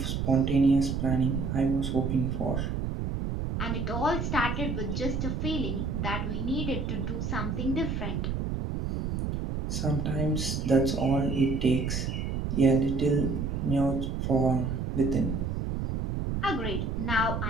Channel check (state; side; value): noise; right; rumble, 2 dB below the sound